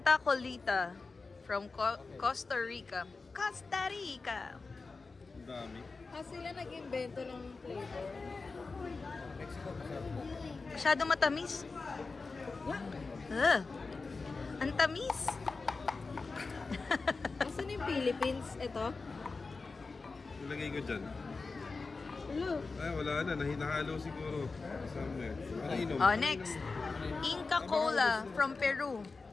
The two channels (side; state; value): right; quieter; 4.1 dB